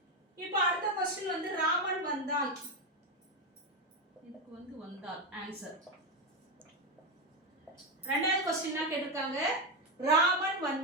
இப்போ அடுத்த கொஸ்டின் வந்து ராமன் வந்தான். இதுக்கு வந்து வந்தால் ஆன்சர். ரெண்டாவது கொஸ்டின் தான் கேட்டிருக்காங்க. ராமன்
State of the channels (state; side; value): normal; both; correlation 0.10